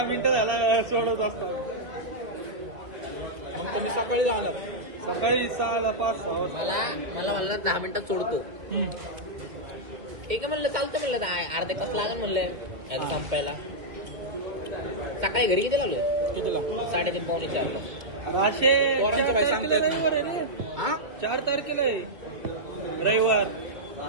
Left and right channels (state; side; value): late; left; 2.0 ms